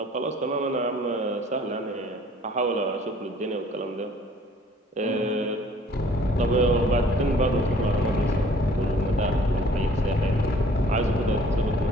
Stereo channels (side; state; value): both; normal; correlation 0.55